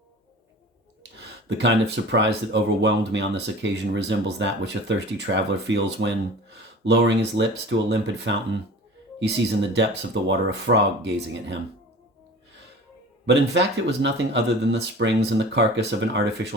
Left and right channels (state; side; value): normal; both; correlation 0.40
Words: The kind of surprise that overwhelmed me on this occasion resembles that which a thirsty traveler feels when, lowering his lips to a limpid fountain, he sees in the depths of the water a frog gazing at him. But in fact, it was nothing other than the springs and the carcass of an